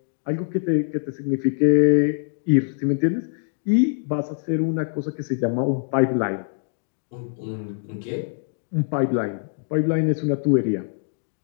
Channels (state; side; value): silent; right; digital silence